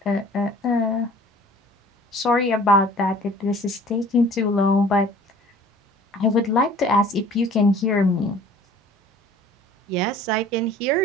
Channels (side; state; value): both; normal; correlation 0.49